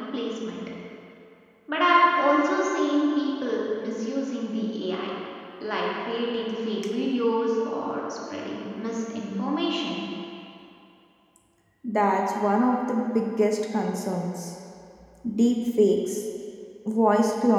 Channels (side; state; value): both; identical; correlation 1.00